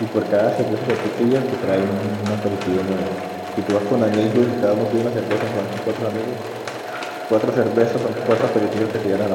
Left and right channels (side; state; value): both; identical; correlation 1.00